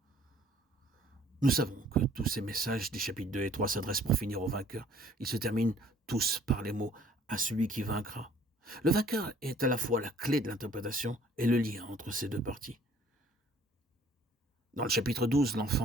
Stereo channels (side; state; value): both; normal; correlation 0.57